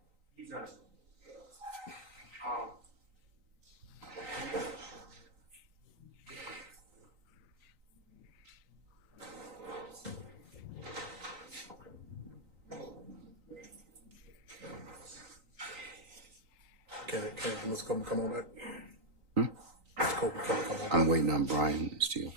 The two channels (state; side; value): late; left; 3.9 ms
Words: Can Mr. Copeland come on back? Mr. Copeland, come on back. I'm waiting on Brian Steele